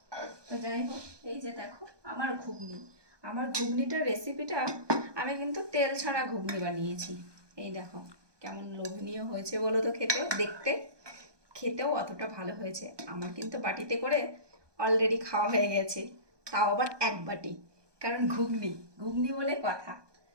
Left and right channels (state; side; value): late; left; 1.2 ms